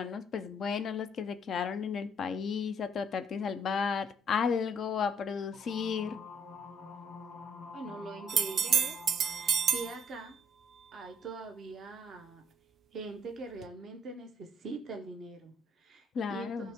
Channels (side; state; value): both; normal; correlation 0.65